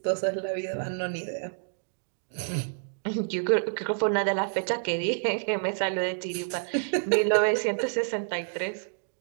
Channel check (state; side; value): silent; left; digital silence